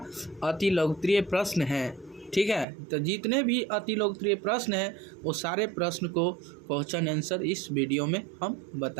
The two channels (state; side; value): drops out; left; at 2.7 s